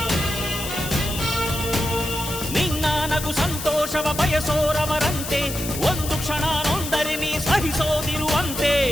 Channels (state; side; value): noise; left; hiss, 7 dB below the sound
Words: ನಿನ್ನ ನಗು ಸಂತೋಷವ ಬಯಸೋರವರಂತೆ, ಒಂದು ಕ್ಷಣ ನೊಂದರೆ ನೀ ಸಹಿಸೋದಿರುವಂತೆ.